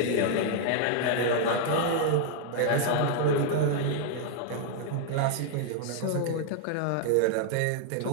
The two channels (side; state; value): both; different; correlation 0.00